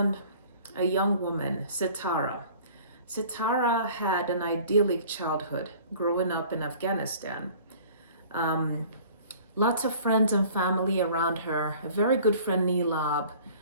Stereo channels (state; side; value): inverted; both; correlation -0.49